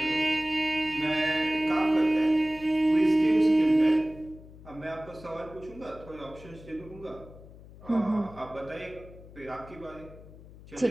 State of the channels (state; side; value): noise; left; hum, 19 dB below the sound